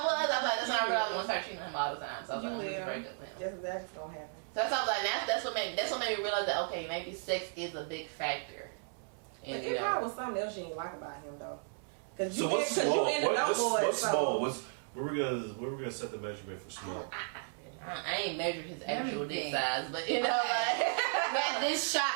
was like, that's why I realized I'm gonna start cheating on him all the time. So I was like, I'm gonna break up with him. That's exactly what's gonna happen. So that's why I was like, that's what made me realize that okay, maybe sex is a big factor. And it probably was something else you didn't like about him though. Cause so what's small? What's small? Where we gonna set the measurement for small? I ain't measured his actual dick size, but you know, like man, this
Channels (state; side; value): silent; left; 55 dB below the other